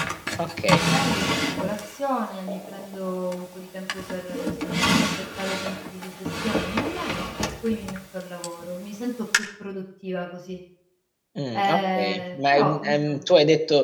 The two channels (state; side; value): identical; both; correlation 1.00